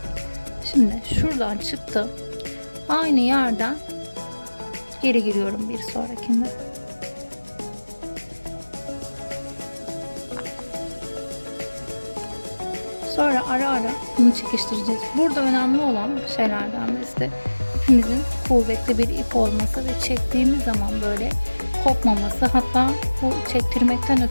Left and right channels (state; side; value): inverted; both; correlation -1.00